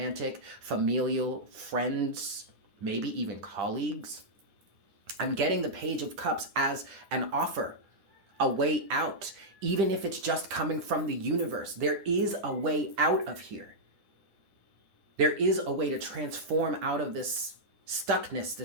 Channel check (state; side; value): late; left; 10 ms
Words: familial, friends, maybe even colleagues. I'm getting the Page of Cups as an offer, a way out, even if it's just coming from the universe. There is a way out of here. There is a way to transform out of this stuckness,